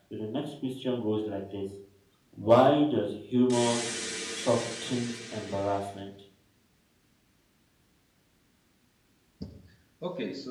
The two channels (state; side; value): identical; both; correlation 1.00